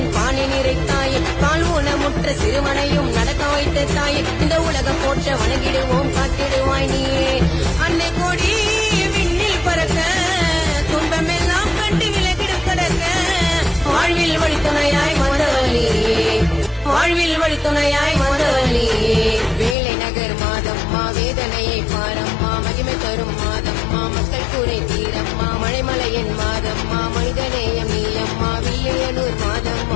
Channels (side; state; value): right; drops out; at 19.8 s